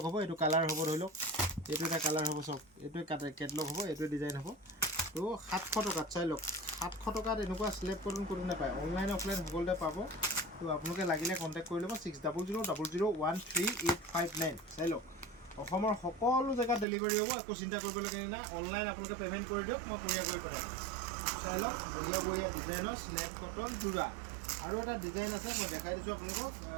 হ'ব এইটো কালাৰ হ'ব ধৰি লওক এইটো এটা কালাৰ হ'ব চাওক এইটোৱে কেটলগ হ'ব এইটোৱে ডিজাইন হ'ব তো 700 টকাত চাই লওক 700 টকাত এনেকুৱা স্লেব কটন কোনো নাপায় অনলাইন অফলাইন সকলোতে পাব তো আপোনালোকে লাগিলে কণ্টেক্ট কৰি ল'ব 6000001859 চাই লওক অসমৰ সকলো জেগাত ডেলিভাৰী হ'ব একো চিন্তা কৰিবলগীয়া নাই অনলাইন আপোনালোকে পে'মেণ্ট কৰি দিয়ক মই কোৰিয়াৰ কৰি পঠাই দিম চাই লওক বঢ়িয়া বঢ়িয়া ডিজাইনৰ স্লেব কটন যোৰা আৰু এটা ডিজাইন আছে মই দেখাই দিছোঁ আপোনালোকক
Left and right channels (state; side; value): drops out; left; at 16.9 s